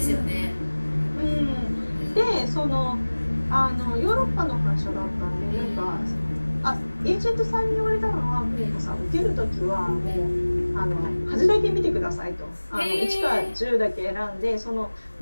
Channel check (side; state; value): both; inverted; correlation -1.00